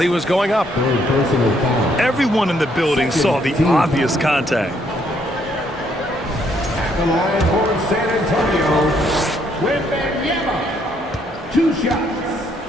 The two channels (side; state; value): both; normal; correlation 0.70